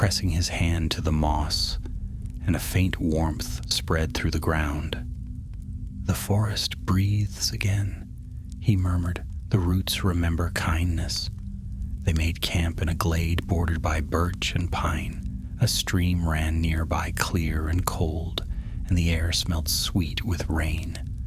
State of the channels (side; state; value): both; identical; correlation 1.00